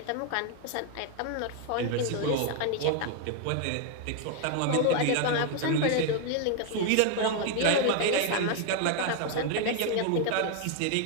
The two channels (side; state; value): both; different; correlation 0.01